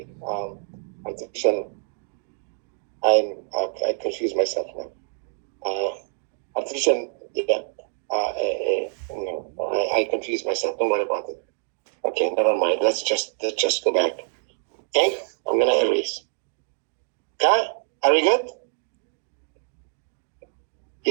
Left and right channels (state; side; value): silent; left; digital silence